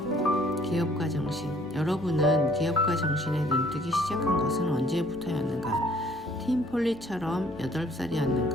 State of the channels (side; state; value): both; normal; correlation 0.60